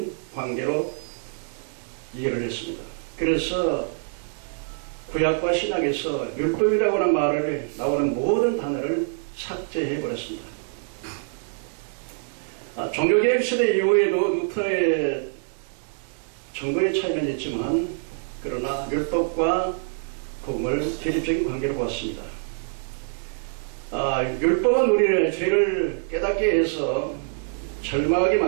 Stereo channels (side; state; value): left; silent; 62 dB below the other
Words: 관계로 이해를 했습니다. 그래서 구약과 신약에서 율법이라고 하는 말을 나오는 모든 단어를 삭제해 버렸습니다. 종교개혁 시대 이후에도 루터의 정거의 차이는 있지만 그러나 율법과 복음을 대립적인 관계로 보았습니다. 율법은 우리를 죄를 깨닫게 해서 절망하게